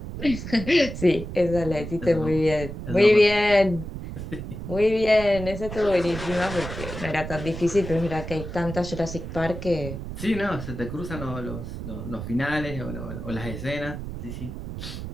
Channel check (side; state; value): right; noise; rumble, 8 dB below the sound